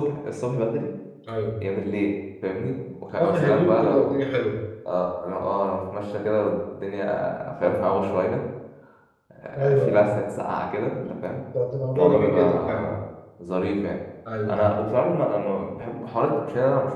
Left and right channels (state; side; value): identical; both; correlation 1.00